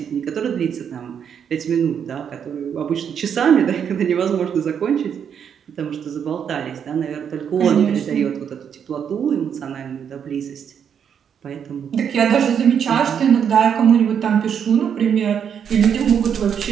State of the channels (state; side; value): quieter; left; 7.9 dB